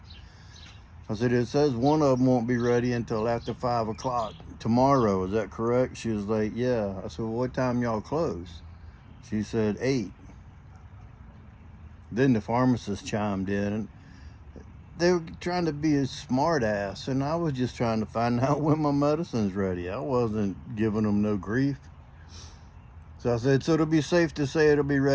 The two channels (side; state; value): both; identical; correlation 1.00